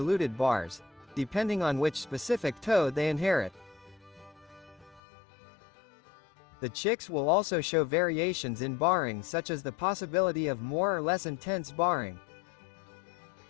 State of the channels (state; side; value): drops out; right; at 5.0 s